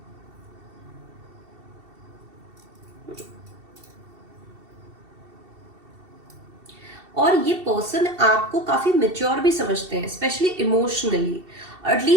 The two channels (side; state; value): left; late; 2.7 ms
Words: और ये पर्सन आपको काफी मेच्योर भी समझते हैं, स्पेशली इमोशनली,